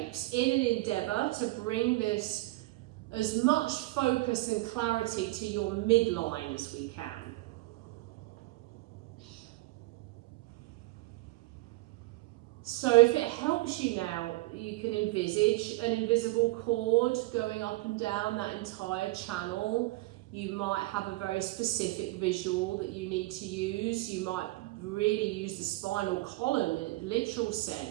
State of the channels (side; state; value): left; quieter; 21.1 dB